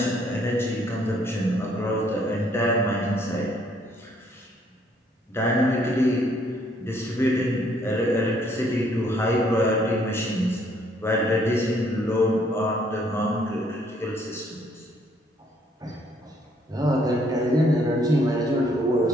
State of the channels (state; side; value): normal; both; correlation 0.66